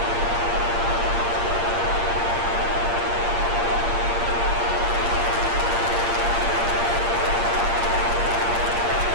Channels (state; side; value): late; left; 8.6 ms